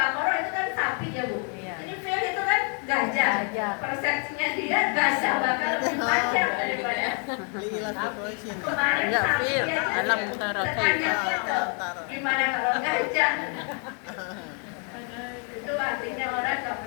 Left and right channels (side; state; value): right; quieter; 39.4 dB